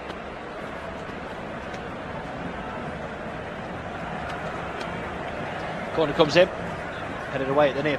Corner comes in, headed away at the near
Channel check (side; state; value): both; identical; correlation 1.00